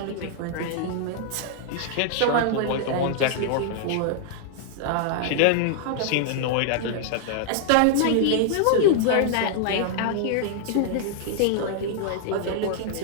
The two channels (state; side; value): different; both; correlation -0.01